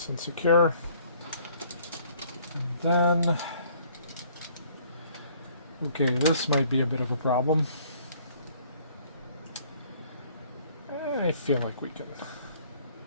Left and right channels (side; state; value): both; inverted; correlation -0.59